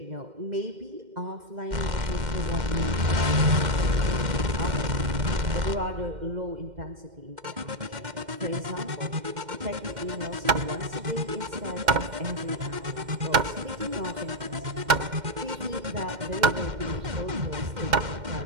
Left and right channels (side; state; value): left; late; 2.1 ms